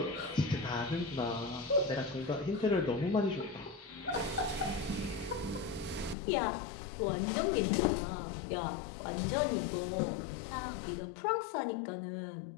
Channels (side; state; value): right; drops out; at 6.2 s